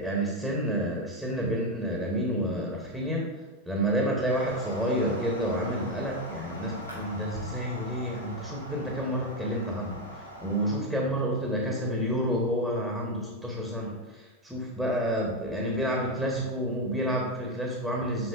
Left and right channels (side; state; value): both; normal; correlation 0.08